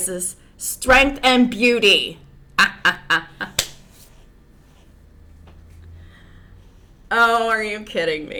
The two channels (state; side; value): identical; both; correlation 1.00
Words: strength and beauty. Oh, are you kidding